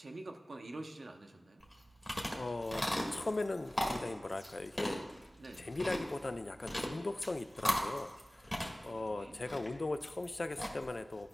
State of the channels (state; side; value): normal; both; correlation 0.98